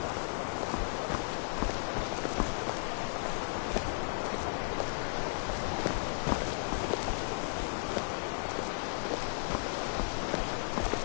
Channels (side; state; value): right; silent; digital silence